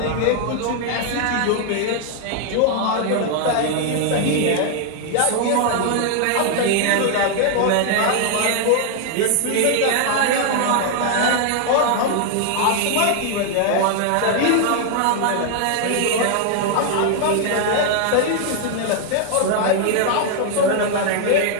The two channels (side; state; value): both; different; correlation 0.00